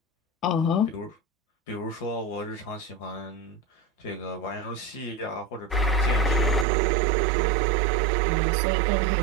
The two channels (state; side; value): drops out; left; at 6.7 s